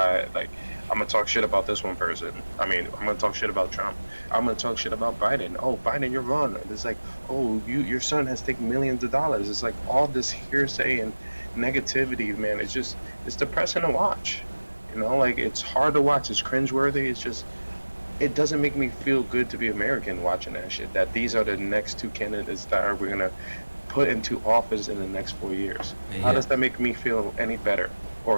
Like, I'm gonna talk shit about this one person. I mean, I'm gonna talk shit about Trump. I'm gonna talk shit about Biden. Oh, Biden, you're wrong. It's like, oh, your son has taken millions of dollars. It's like all this hearsay and negativity, man. It's depressing to watch. Like it's hard to watch. It's cringeworthy. It's just it doesn't make me feel good to be American watching that shit. That these are the next two candidates that we're gonna put into office in the next 4 years. How Yeah, does that make me feel any better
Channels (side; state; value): both; inverted; correlation -1.00